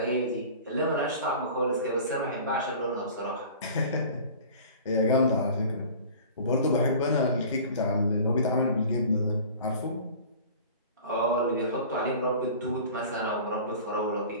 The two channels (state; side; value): inverted; both; correlation -0.42